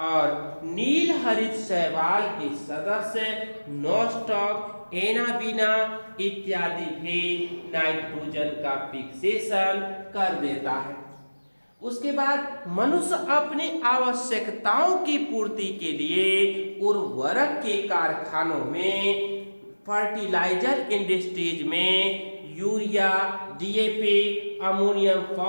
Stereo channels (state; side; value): inverted; both; correlation -1.00